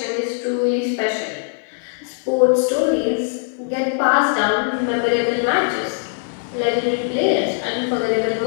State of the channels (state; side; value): silent; right; 65 dB below the other